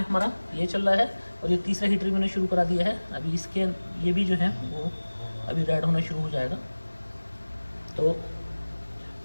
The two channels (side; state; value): both; inverted; correlation -1.00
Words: हमारा ये चल रहा है, और ये तीसरा हीटर भी मैंने शुरू करा दिया है। अभी इसके ये भी जो है वो अभी रेड होना शुरू हो जाएगा। तो